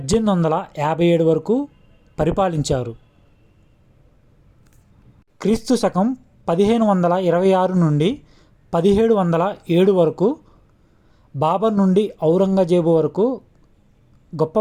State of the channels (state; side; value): identical; both; correlation 1.00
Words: వరకు పరిపాలించారు. క్రీస్తు శకం 1526 నుండి 1707 వరకు బాబర్ నుండి ఔరంగజేబు వరకు గొప్ప